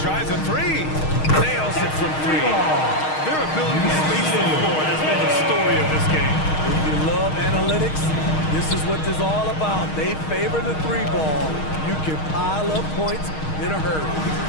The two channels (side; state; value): right; late; 6.4 ms